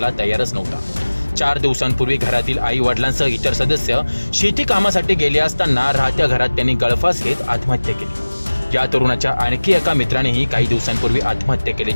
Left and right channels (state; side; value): inverted; both; correlation -1.00